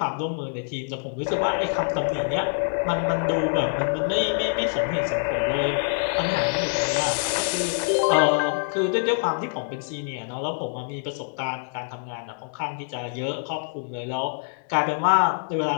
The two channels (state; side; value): silent; right; digital silence